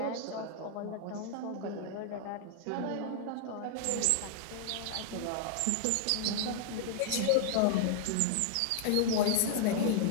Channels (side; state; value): both; different; correlation -0.01